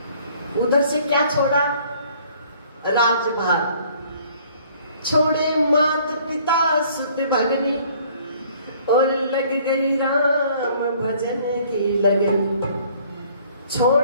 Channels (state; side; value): inverted; both; correlation -0.57